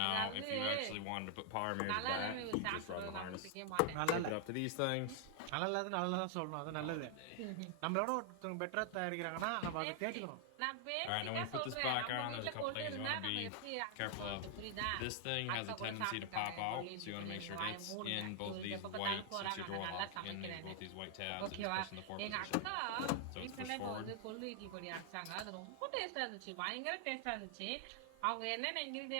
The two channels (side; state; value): both; different; correlation 0.00